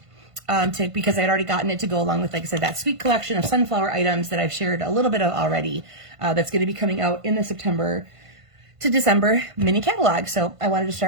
Because I'd already gotten it to go along with, like I said, that sweet collection of sunflower items that I've shared a little bit of already, that's going to be coming out in the September to December mini catalog. So I wanted to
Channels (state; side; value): late; left; 1.5 ms